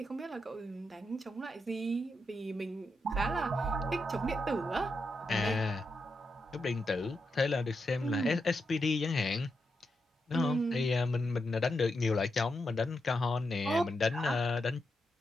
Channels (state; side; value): normal; both; correlation 0.85